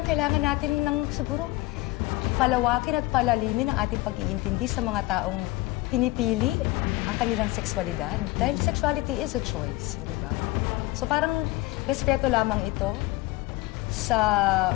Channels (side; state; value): right; quieter; 20.0 dB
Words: kailangan natin ng siguro palawakin at palalimin ang ating pag-iintindi sa mga taong pinipili ang kanilang sexualidad. Dahil sexuality is a choice, hindi ba? So parang respeto lamang ito sa